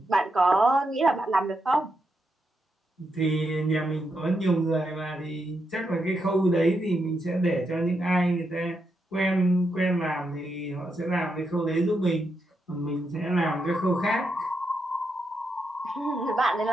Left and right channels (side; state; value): both; normal; correlation 0.83